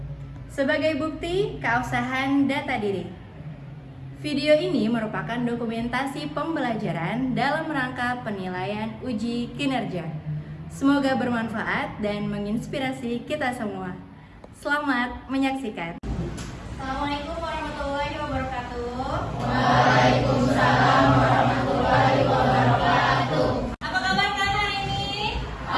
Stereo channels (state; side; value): identical; both; correlation 1.00